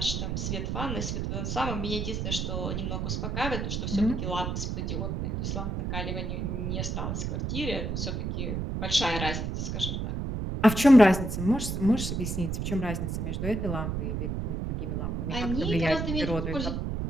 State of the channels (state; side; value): noise; right; rumble, 2 dB below the sound